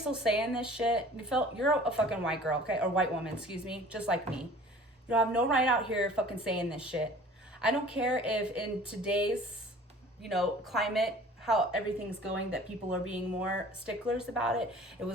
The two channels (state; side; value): normal; both; correlation 0.47